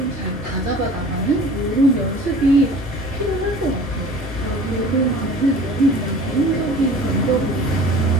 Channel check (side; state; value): both; normal; correlation 0.44